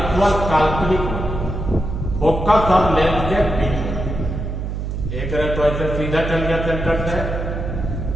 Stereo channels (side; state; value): right; noise; hum, 4 dB below the sound